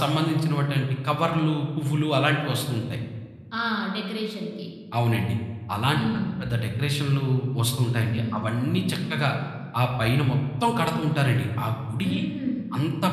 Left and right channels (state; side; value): identical; both; correlation 1.00